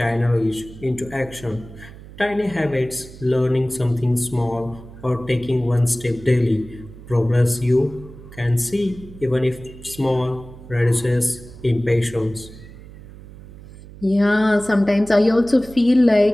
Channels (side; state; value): right; noise; hum, 18 dB below the sound